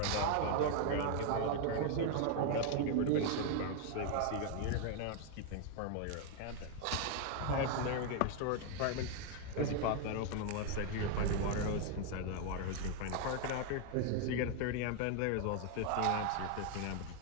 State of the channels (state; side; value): different; both; correlation 0.00